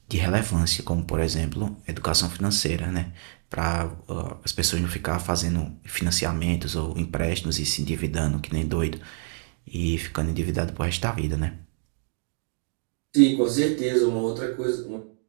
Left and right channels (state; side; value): silent; left; 61 dB below the other